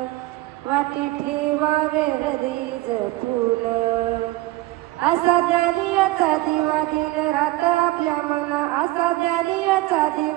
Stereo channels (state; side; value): quieter; left; 18.7 dB